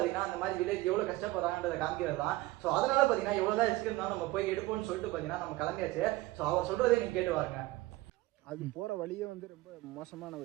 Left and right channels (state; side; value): quieter; left; 18.8 dB